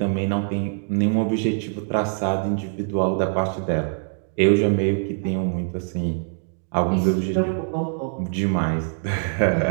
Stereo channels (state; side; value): silent; left; digital silence